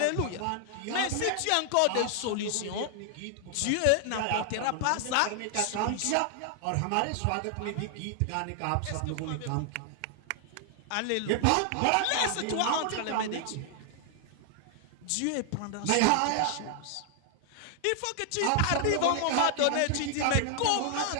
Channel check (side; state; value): both; different; correlation 0.00